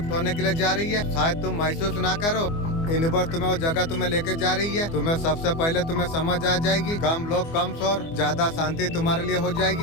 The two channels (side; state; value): right; late; 24 ms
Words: होने के लिए जा रही है। शायद तुम महसूस ना करो, यूनिवर्स तुम्हें वो जगह तुम्हें लेके जा रही है। तुम्हें सबसे पहले तुम्हें समझ आ जाएगी, कम लोग कम शोर, ज्यादा शांति तुम्हारे लिए हो